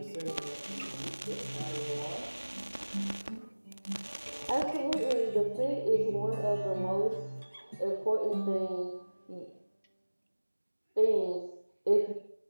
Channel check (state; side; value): inverted; both; correlation -1.00